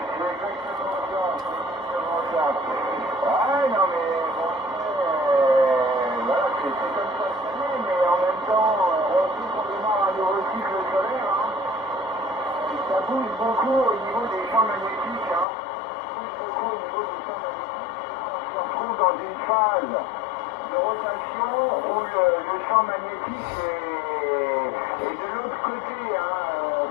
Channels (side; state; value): right; drops out; at 15.5 s